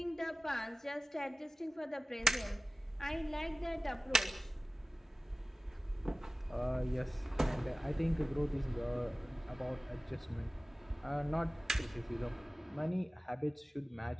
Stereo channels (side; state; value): both; normal; correlation 0.97